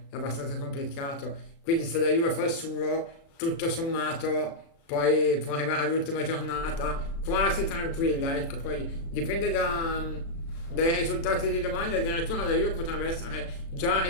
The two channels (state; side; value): late; right; 36 ms